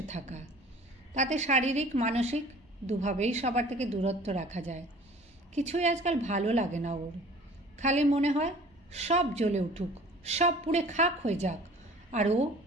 থাকা। তাতে শারীরিক মানসিক দুভাবেই সবার থেকে দূরত্ব রাখা যায়। কিছুই আজকাল ভালো লাগে না ওর। খালি মনে হয় সব জ্বলে উঠুক, সব পুড়ে খাক হয়ে যাক, আর ও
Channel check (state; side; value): normal; both; correlation 0.48